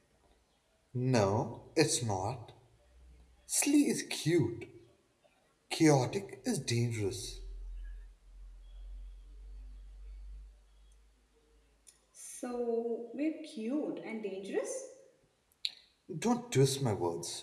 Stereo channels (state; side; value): identical; both; correlation 1.00